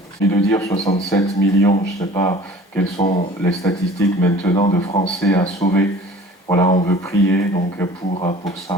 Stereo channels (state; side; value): normal; both; correlation 0.46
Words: et de dire 67 millions, je ne sais pas quelles sont les statistiques maintenant de Français à sauver. Voilà, on veut prier donc pour